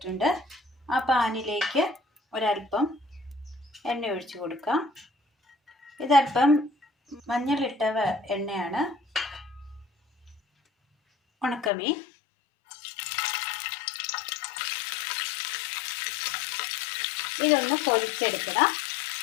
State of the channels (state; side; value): drops out; right; at 11.7 s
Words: ആ പാനിലേക്ക് ഒരല്പം എണ്ണ ഒഴിച്ചു കൊടുക്കാം. ഇതല്പം മഞ്ഞളിട്ട എണ്ണയാണ്. ഉണക്കമീൻ, ഇതൊന്ന് പൊരിച്ചെടുക്കണം.